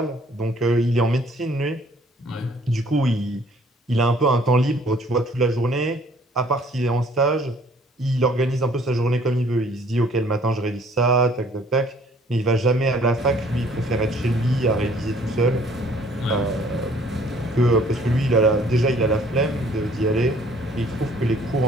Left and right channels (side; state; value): both; normal; correlation 0.58